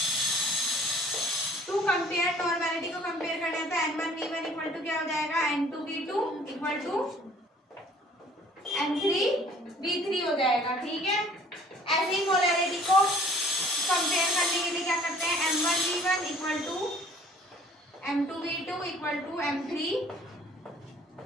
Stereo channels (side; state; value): both; normal; correlation 0.54